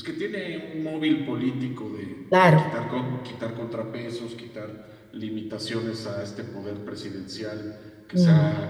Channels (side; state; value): both; identical; correlation 1.00